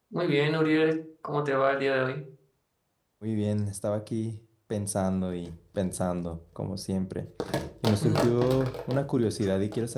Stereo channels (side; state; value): both; identical; correlation 1.00